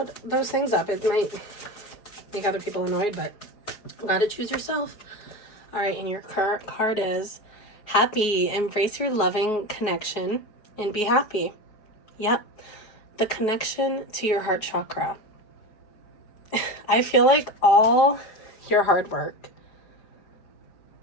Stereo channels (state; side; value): late; right; 4.8 ms